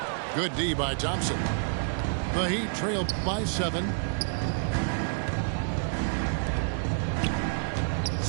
Good D by Thompson. The Heat trail by 7.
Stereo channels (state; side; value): silent; left; digital silence